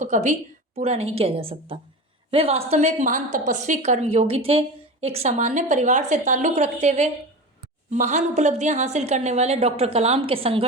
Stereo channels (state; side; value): normal; both; correlation 0.29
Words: कभी पूरा नहीं किया जा सकता। वे वास्तव में एक महान तपस्वी कर्मयोगी थे। एक सामान्य परिवार से ताल्लुक रखते हुए महान उपलब्धियां हासिल करने वाले डॉक्टर कलाम के